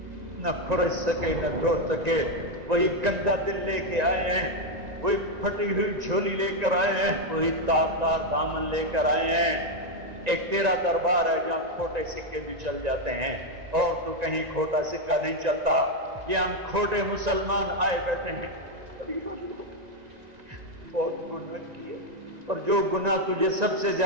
نہ کھرچ سکے نہ دھو سکے، وہی گندا دل لے کے آئے ہیں، وہی پھٹی ہوئی جھولی لے کر آئے ہیں، وہی تار تار دامن لے کر آئے ہیں۔ ایک تیرا دربار ہے جہاں کھوٹے سکے بھی چل جاتے ہیں، اور تو کہیں کھوٹا سکہ نہیں چلتا، یہ ہم کھوٹے مسلمان آئے بیٹھے ہیں، بہت گناہ کیے، اور جو گناہ تجھے سب سے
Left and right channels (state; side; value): late; left; 1.9 ms